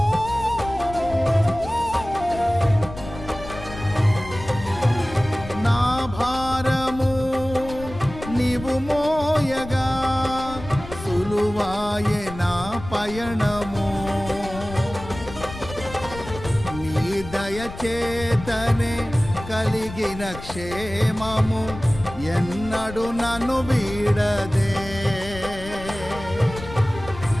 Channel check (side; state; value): left; noise; rumble, 13 dB below the sound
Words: నా భారము నీవు మోయగా సులువాయే నా పయనము. నీ దయచేతనే కలిగిన క్షేమము ఎన్నడు నన్ను వీడదే.